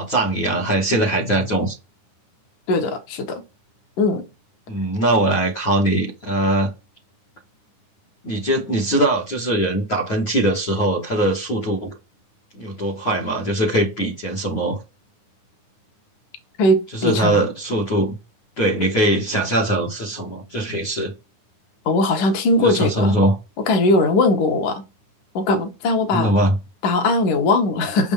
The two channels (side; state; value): right; late; 9.8 ms